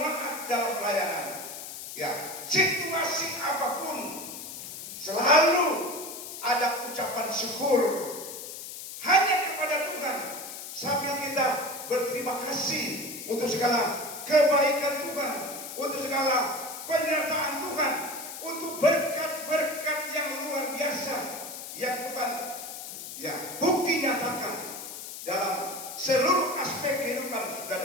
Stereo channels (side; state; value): left; noise; hiss, 10 dB below the sound